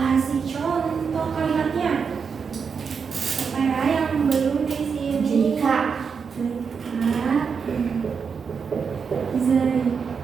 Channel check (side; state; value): left; quieter; 6.0 dB